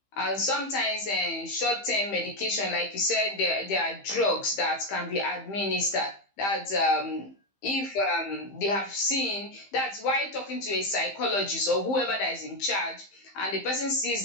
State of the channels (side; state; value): right; late; 15 ms